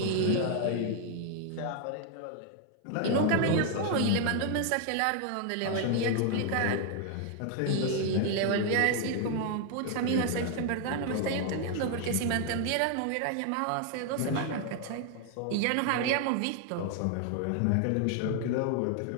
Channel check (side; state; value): both; different; correlation 0.00